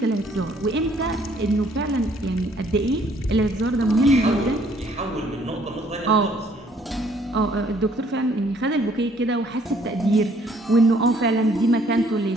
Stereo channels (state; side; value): normal; both; correlation 0.63